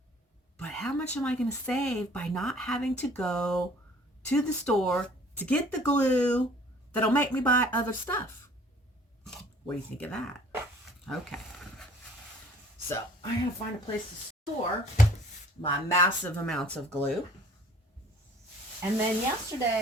but how much am I going to save by not having to go to the store to get the glue that'll make me buy other stuff? What do you think of that? Okay. So I gotta find a place to store my massive amounts of glue. And then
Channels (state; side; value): normal; both; correlation 0.53